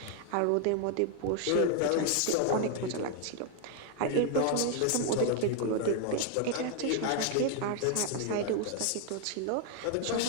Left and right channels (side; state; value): both; different; correlation 0.00